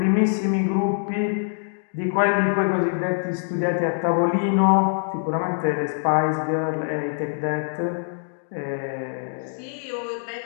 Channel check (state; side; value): silent; right; digital silence